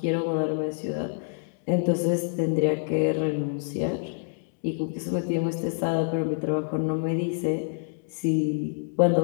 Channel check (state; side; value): silent; right; digital silence